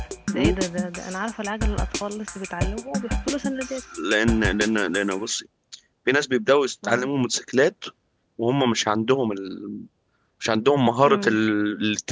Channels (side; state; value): both; identical; correlation 1.00